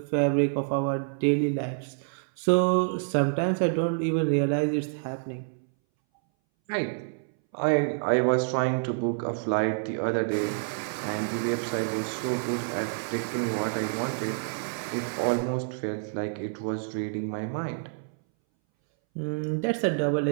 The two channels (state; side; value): silent; left; 59 dB below the other